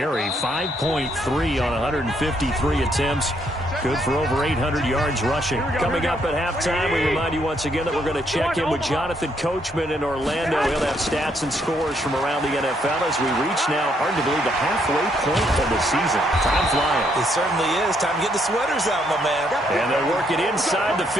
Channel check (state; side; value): normal; both; correlation 0.72